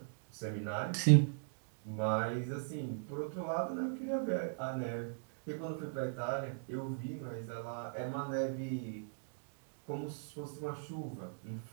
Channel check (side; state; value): left; silent; digital silence